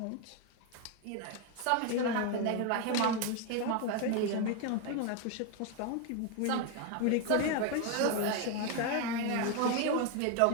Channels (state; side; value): different; both; correlation 0.02